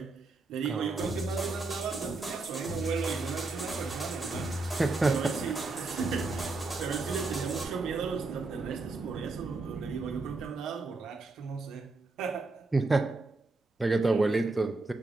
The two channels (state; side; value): quieter; left; 3.5 dB